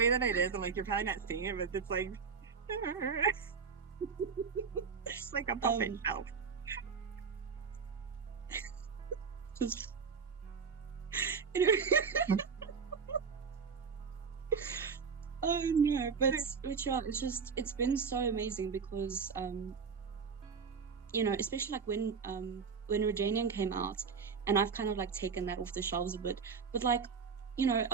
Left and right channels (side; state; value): left; quieter; 5.7 dB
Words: that it is, I'm like, you're probably not seeing it, but it's like, it's like a puppet show. Just, oh no, but yeah, it's been so amazing because especially like when Redanian came out, and I've kind of like taken that off the shelves a bit, but like,